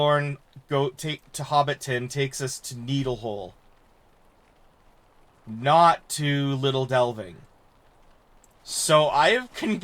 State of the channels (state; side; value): identical; both; correlation 1.00